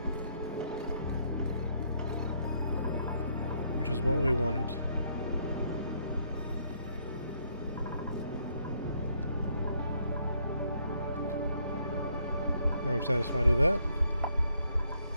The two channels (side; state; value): both; inverted; correlation -0.71